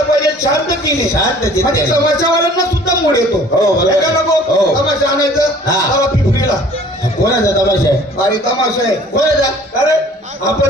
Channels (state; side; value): normal; both; correlation 0.51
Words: पाहिजे शांततेने शांत चित्ते. म्हणजे तमाशावाल्यांना सुद्धा मूड येतो हो, बरोबर. हे का नको हो. तमाशा आणायचं हा. चला पिपरीला कोणाचा तमाशा आहे. भारी तमाशा आहे कोणाचा. अरे